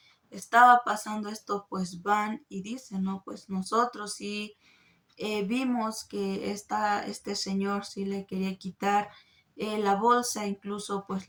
estaba pasando esto, pues van y dicen, no, pues nosotros sí vimos que este señor sí le quería quitar la bolsa, incluso pues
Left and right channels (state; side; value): identical; both; correlation 1.00